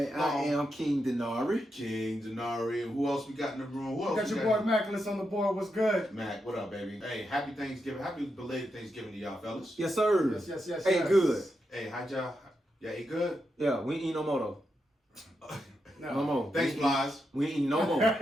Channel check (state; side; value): normal; both; correlation 0.85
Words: I am King Denari. King Denari. And who else we got in the room? We got your boy Mackless on the board. What's good? Mac, what up, baby? Hey, happy Thanksgiving. Happy belated Thanksgiving to y'all fellas. Yes, sir. Yes. Hey, good. Hey, how'd y'all? Yeah, ate good? Yeah, we ain't eat no more though. No more. Thanks, Plies. We ain't eat no more.